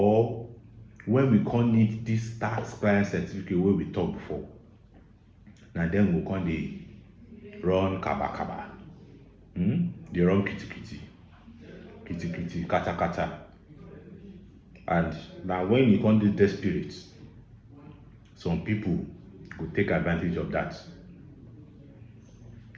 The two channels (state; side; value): identical; both; correlation 1.00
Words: when we can't need this tax clearance certificate wey we talk before, na dem go come dey run kaba, dey run kiti, kata. And now when you can't do desperate, some people go take advantage of that.